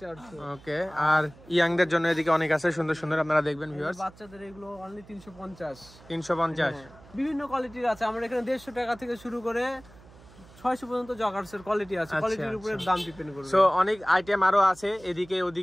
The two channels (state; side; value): noise; right; hum, 23 dB below the sound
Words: 400। ওকে। আর ইয়াংদের জন্য এদিকে অনেক আছে সুন্দর সুন্দর, আপনারা দেখবেন ভিউয়ার্স। বাচ্চাদের এগুলো অনলি 350। 350? বিভিন্ন কোয়ালিটির আছে। আমরা এখানে 150 টাকা থেকে শুরু করে 600 পর্যন্ত জগার্সের কোয়ালিটি আছে। কোয়ালিটির উপরে দাম ডিপেন্ড করবে। সো অনেক আইটেম আরো আছে এদিকে